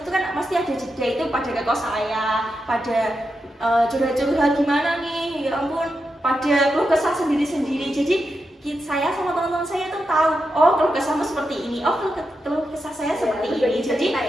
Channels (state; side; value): normal; both; correlation 0.87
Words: itu kan pasti ada jeda, itu pada ke kos saya, pada curhat-curhat gimana nih, ya ampun, pada keluh kesah sendiri-sendiri. Jadi saya sama teman-teman saya tuh tahu, oh keluh kesahmu seperti ini, oh keluh kesah saya seperti ini. Jadi